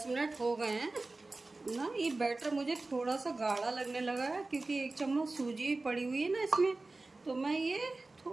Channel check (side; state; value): left; quieter; 3.3 dB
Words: मिनट हो गए हैं ना, ये बैटर मुझे थोड़ा सा गाढ़ा लगने लगा है, क्योंकि 1 चम्मच सूजी पड़ी हुई है ना इसमें, तो मैं ये